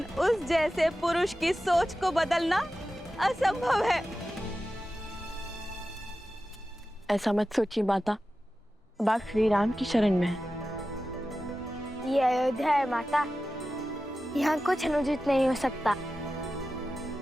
उस जैसे पुरुष की सोच को बदलना असंभव है। ऐसा मत सोचिए माता, अब आप श्री राम की शरण में हैं। ये अयोध्या है माता, यहाँ कुछ अनुचित नहीं हो सकता।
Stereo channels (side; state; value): both; normal; correlation 0.93